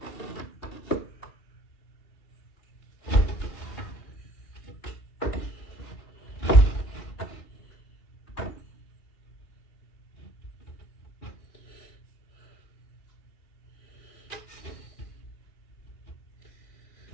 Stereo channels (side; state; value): right; late; 2.7 ms